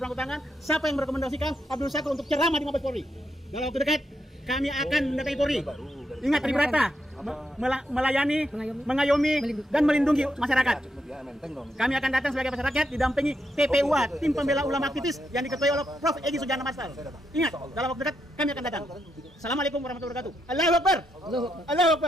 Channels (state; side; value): normal; both; correlation 0.81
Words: tangan. Siapa yang merekomendasikan Abdul Syakur untuk ceramah di Mabes Polri? Dalam waktu dekat kami akan mendatangi Polri. Ingat Tribrata, melayani, mengayomi, dan melindungi masyarakat. Kami akan datang sebagai masyarakat didampingi TPUA, Tim Pembela Ulama Aktivis yang diketuai oleh Prof. Egy Sujana Masal. Ingat, dalam waktu dekat kami akan datang. Assalamualaikum warahmatullahi wabarakatuh. Allahu Akbar. Allahu